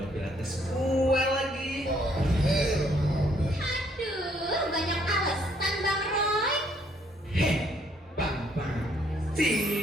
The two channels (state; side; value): normal; both; correlation 0.67